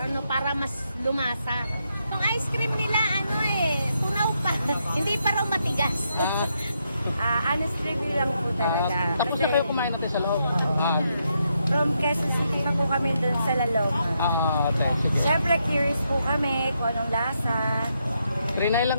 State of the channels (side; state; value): both; inverted; correlation -0.80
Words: para mas lumasa. Yung ice cream nila, ano tunaw pa. Hindi pa raw matigas. Honest review lang po talaga. Tapos na Kasi kayo kumain natin sa loob. from Quezon City pa po kami dun sa Lalong. Sige. Siyempre curious po kami kung anong lasa. Trinay lang